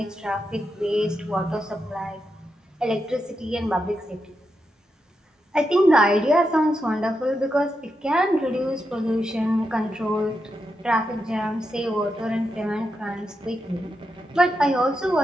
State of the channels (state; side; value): normal; both; correlation 0.86